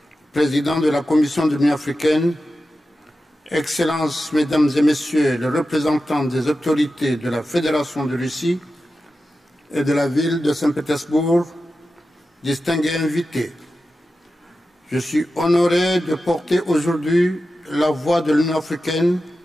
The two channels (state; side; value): normal; both; correlation 0.92